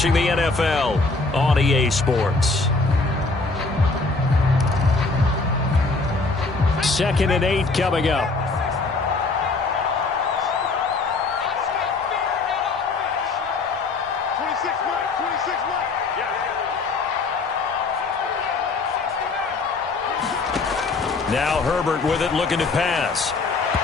the NFL on EA Sports. 2nd and 8 coming up. Now Herbert with it, looking to pass.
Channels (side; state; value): right; quieter; 3.8 dB